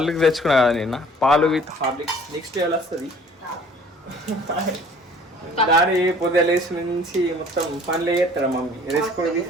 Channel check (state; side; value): normal; both; correlation 0.52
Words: తెచ్చుకున్నా కదా నిన్న, పాలు విత్ హార్లిక్స్. నెక్స్ట్ లెవెల్ వస్తుంది. డాడీ పొద్దున లేచి నుంచి మొత్తం పనులు చేస్తాడు, మమ్మీ వేసుకొని